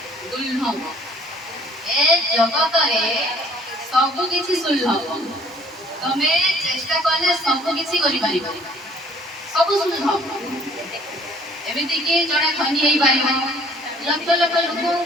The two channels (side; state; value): both; normal; correlation 0.56